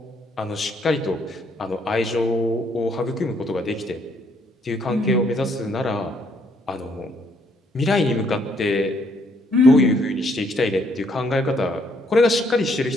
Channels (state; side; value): normal; both; correlation 0.69